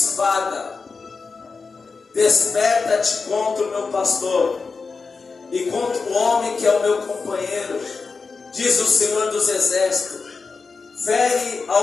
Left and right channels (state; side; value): quieter; right; 4.6 dB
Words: desperta-te contra o meu pastor e contra o homem que é o meu companheiro, diz o Senhor dos Exércitos. Fere